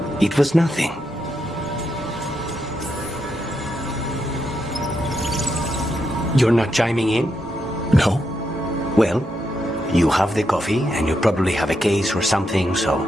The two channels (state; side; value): normal; both; correlation 0.82